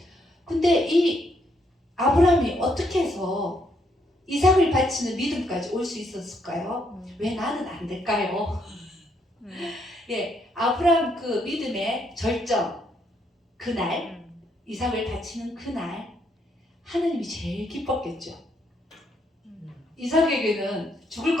근데 이 아브라함이 어떻게 해서 이삭을 바치는 믿음까지 올 수 있었을까요? 왜 나는 안 될까요? 예, 아브라함 그 믿음의 절정, 그날, 이삭을 바치는 그날, 하나님이 제일 기뻤겠죠. 이삭에게는 죽을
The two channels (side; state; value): both; normal; correlation 0.73